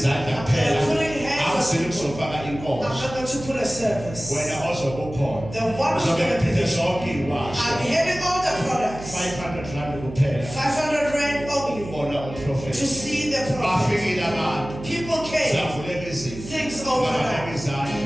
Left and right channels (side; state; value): right; noise; hum, 13 dB below the sound